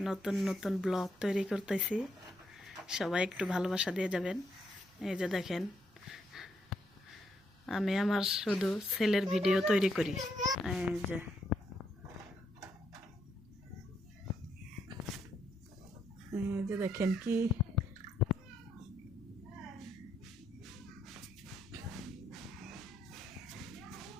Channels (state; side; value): normal; both; correlation 0.76